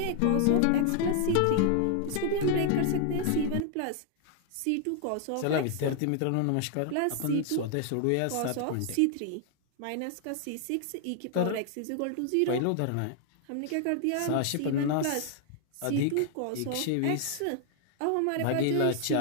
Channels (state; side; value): different; both; correlation 0.00